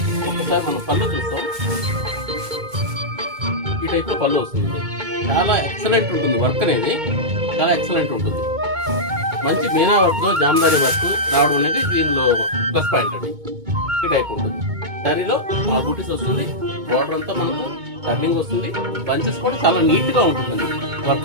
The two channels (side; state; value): left; late; 2.2 ms